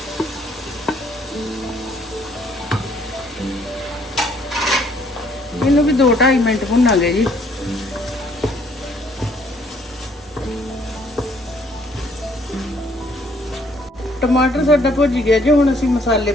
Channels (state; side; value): normal; both; correlation 0.64